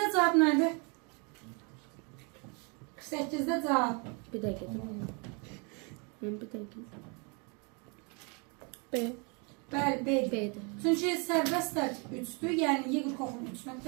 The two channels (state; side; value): quieter; left; 33.4 dB